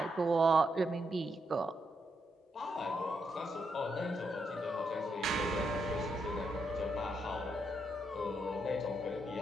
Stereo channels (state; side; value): normal; both; correlation 0.80